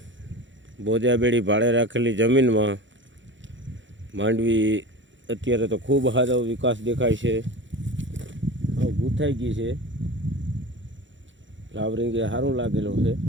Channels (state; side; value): late; left; 0.54 ms